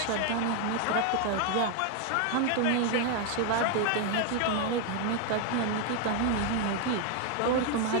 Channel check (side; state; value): both; different; correlation 0.01